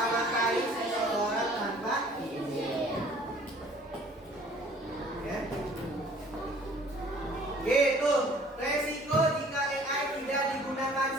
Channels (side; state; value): both; normal; correlation 0.53